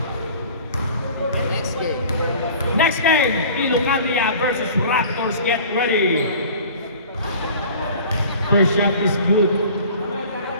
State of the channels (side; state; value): both; inverted; correlation -0.44